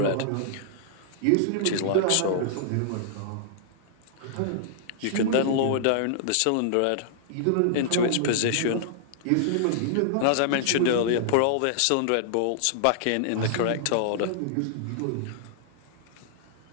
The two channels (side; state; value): both; different; correlation -0.01